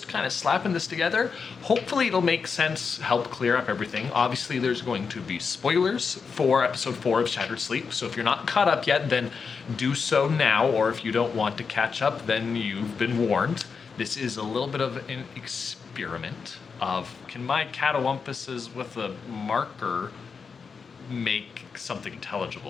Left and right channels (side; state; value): right; quieter; 5.5 dB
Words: kind of slapping this together. Hopefully it'll make sense, help clear up everything. Obviously there's going to be spoilers for episode 4 of Shattered Sleep. So if you're not caught up yet, then do so now. Or if you don't want to catch up, then you've been warned. This is a little bit of an experiment of, can my catawumpuses with a marker make something